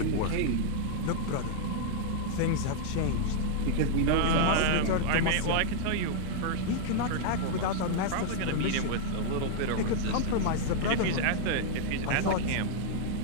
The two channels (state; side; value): different; both; correlation -0.01